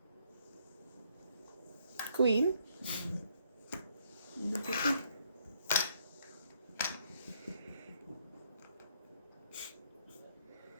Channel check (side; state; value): both; inverted; correlation -0.70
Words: Queen. Hindi pwede.